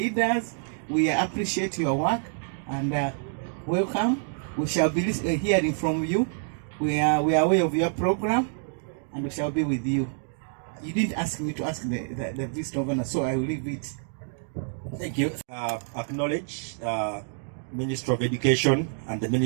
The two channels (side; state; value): left; silent; digital silence